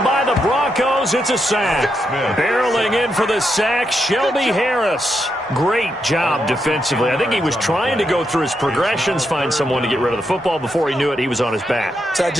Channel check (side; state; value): both; normal; correlation 0.82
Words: by the Broncos. It's a sack. Barreling in for the sack, Shelby Harris. Great job defensively. I think he was trying to go through his progressions, find someone to get rid of the football. Before he knew it, he was on his back. So that